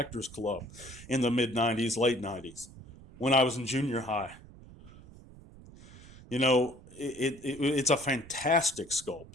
Club in the mid-90s, late 90s, when I was in junior high. It's a fantastic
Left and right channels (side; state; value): right; noise; rumble, 19 dB below the sound